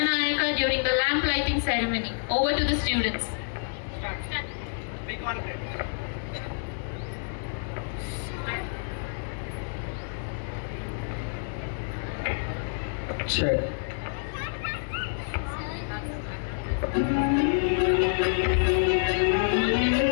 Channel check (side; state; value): right; silent; digital silence